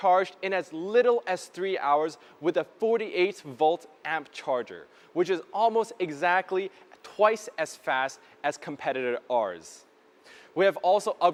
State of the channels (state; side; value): identical; both; correlation 1.00